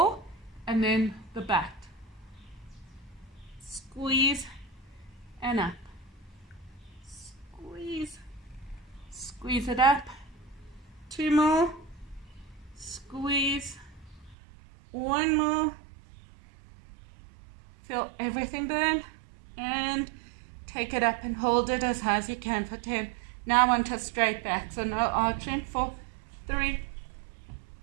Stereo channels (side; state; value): left; drops out; at 14.4 s